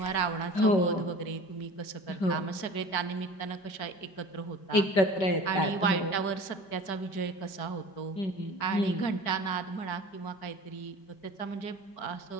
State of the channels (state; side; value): late; right; 5.1 ms